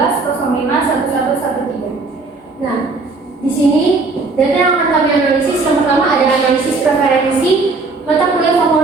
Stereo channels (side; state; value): left; quieter; 3.8 dB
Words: Nah, di sini data yang akan kami analisis yang pertama adalah analisis preferensi mata kuliah